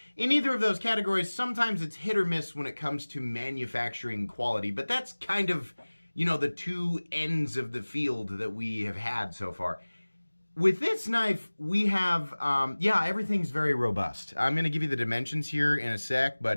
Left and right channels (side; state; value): both; inverted; correlation -1.00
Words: In either of those categories, sometimes it's hit or miss when it comes to manufacturing quality, but that's kind of, you know, the two ends of the field that we have had so far. With this knife, we have, yeah, everything's very robust. I'm going to give you the dimensions here in a sec,